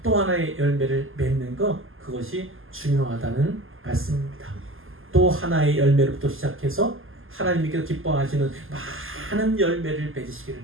또 하나의 열매를 맺는 것, 그것이 중요하다는 말씀입니다. 또 하나의 열매로부터 시작해서 하나님께서 기뻐하시는 많은 열매를 맺으시기를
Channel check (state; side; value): late; left; 0.59 ms